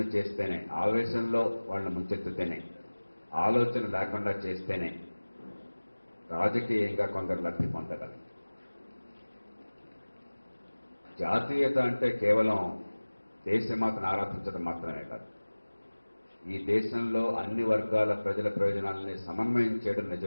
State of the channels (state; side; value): inverted; both; correlation -1.00